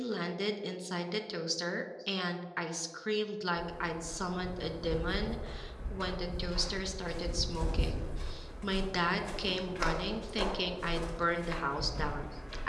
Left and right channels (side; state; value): both; identical; correlation 1.00